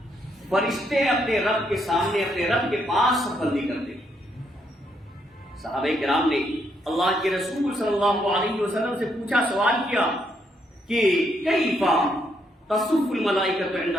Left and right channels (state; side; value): normal; both; correlation 0.75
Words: فرشتے اپنے رب کے سامنے، اپنے رب کے پاس صف بندی کرتے. صحابہ کرام نے اللہ کے رسول صلی اللہ علیہ وسلم سے پوچھا، سوال کیا کہ کیفا تصف الملائکۃ عند